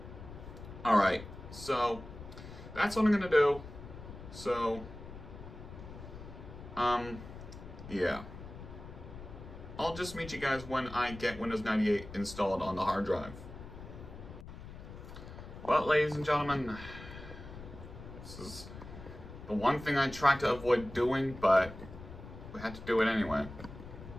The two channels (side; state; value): left; noise; rumble, 13 dB below the sound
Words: Alright, so that's what I'm going to do. So, yeah. I'll just meet you guys when I get Windows 98 installed on the hard drive. Well, ladies and gentlemen, this is the one thing I tried to avoid doing, but we had to do it anyway.